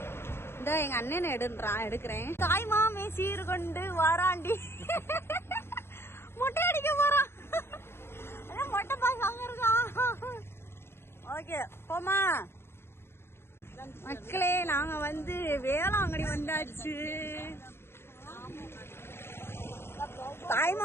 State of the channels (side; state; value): right; late; 0.12 ms